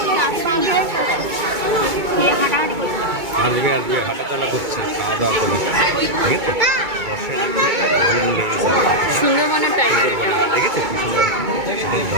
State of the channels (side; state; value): left; late; 2.2 ms